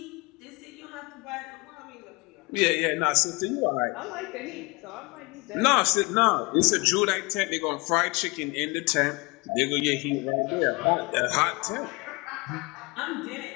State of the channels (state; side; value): quieter; right; 26.5 dB